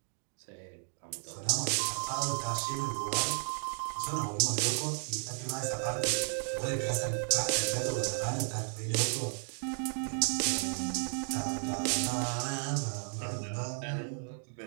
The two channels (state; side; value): silent; left; 55 dB below the other